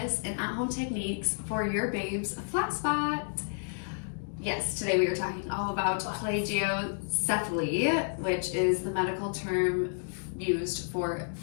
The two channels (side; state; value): right; silent; digital silence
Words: and at-home techniques for your babe's flat spot. Yes, today we are talking all about plagiocephaly, which is the medical term used for